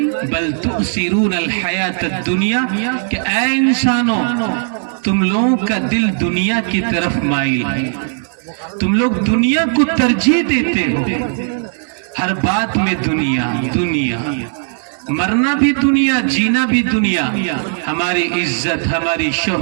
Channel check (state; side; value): silent; left; digital silence